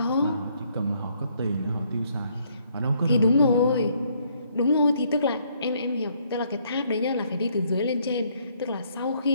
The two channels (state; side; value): inverted; both; correlation -0.69